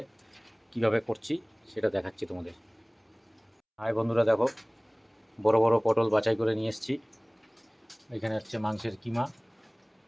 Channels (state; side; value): identical; both; correlation 1.00